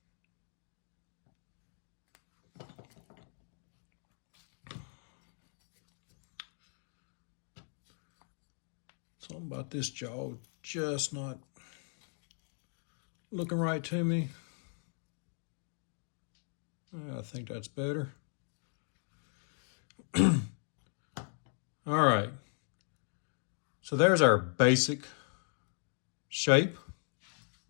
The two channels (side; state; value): right; silent; 53 dB below the other